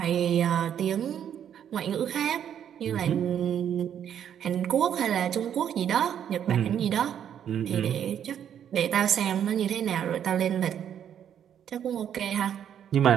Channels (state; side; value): quieter; left; 9.3 dB